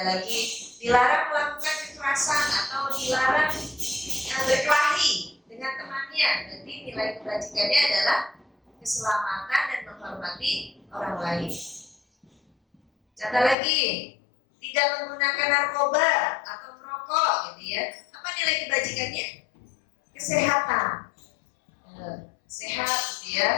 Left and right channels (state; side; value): drops out; right; at 13.6 s